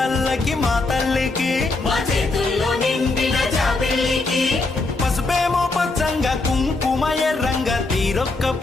మా తల్లికి మా చేతుల్లో నిండిన జాబిల్లికి పసుపేమో పచ్చంగా కుంకుమ ఎర్రంగా తీరొక్క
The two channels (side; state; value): right; quieter; 3.4 dB